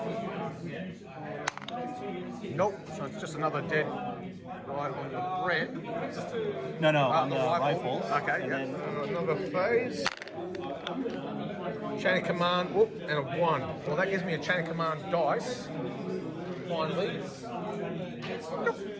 Nope, so it's just another dead right on the Bren. No, on the rifle. Okay, and yeah. Another phase. Chain of command, whoop, and a 1. Well, that gives me a chain of command dice. Finally.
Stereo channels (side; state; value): both; identical; correlation 1.00